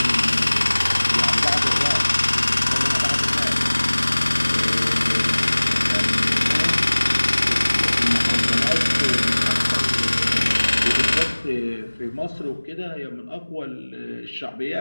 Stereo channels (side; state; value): both; inverted; correlation -1.00